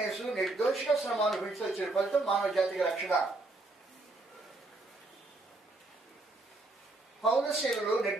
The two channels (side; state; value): left; quieter; 3.0 dB